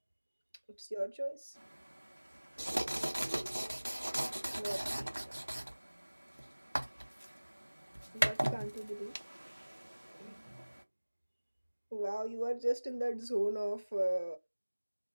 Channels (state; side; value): inverted; both; correlation -1.00